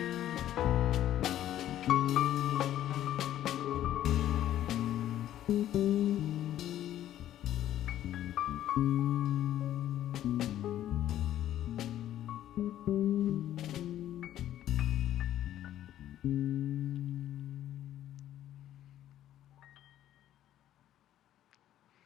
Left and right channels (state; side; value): quieter; right; 12.2 dB